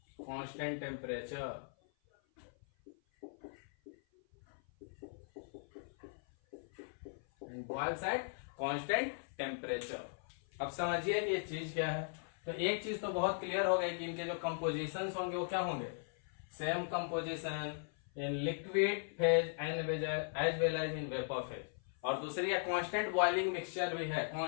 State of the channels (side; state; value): right; silent; 52 dB below the other